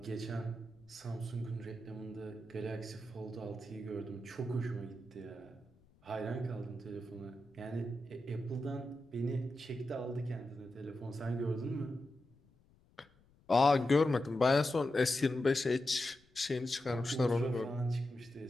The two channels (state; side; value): noise; left; rumble, 30 dB below the sound